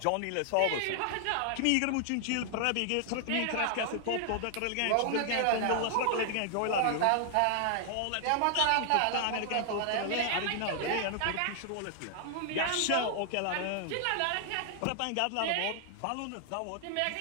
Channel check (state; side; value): different; both; correlation 0.00